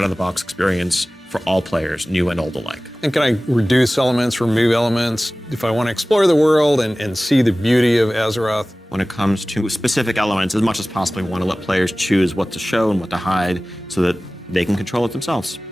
experience for all players, new and old alike. and can I reduce elements, remove elements, if I want to explore the world and see the beauty of Azeroth? When it comes to specific elements, as much as possible, we want to let players choose what to show and what to hide so that they can control it themselves.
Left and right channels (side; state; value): both; normal; correlation 0.98